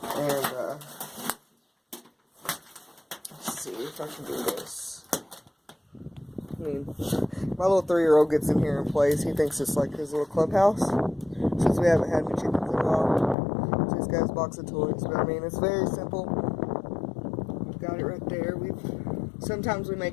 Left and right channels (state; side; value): drops out; right; at 13.4 s